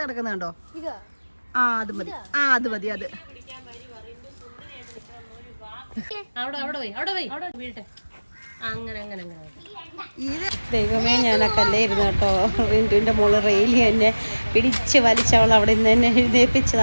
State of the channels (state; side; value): inverted; both; correlation -1.00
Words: കിടക്കുന്നുണ്ടോ? അത് മതി, അത് മതി. അത് ദൈവമേ, ഞാനൊക്കെ അല്ലായിരുന്നു കേട്ടോ. റിൻറ്റുവിൻ്റെ മോള് റെയിലി എന്നെ പിടിച്ച് വലിച്ചവൾ അവിടെ നിന്ന് തന്നെ